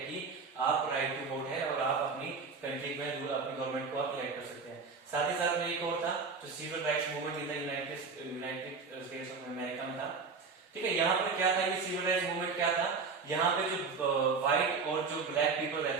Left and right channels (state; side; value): quieter; left; 4.9 dB